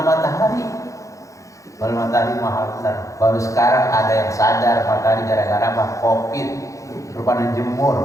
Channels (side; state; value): right; late; 0.15 ms